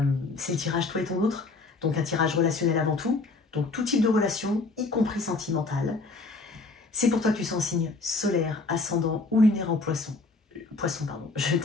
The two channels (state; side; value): quieter; right; 3.6 dB